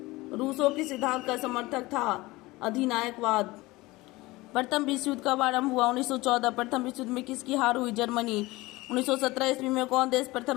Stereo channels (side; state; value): right; quieter; 20.6 dB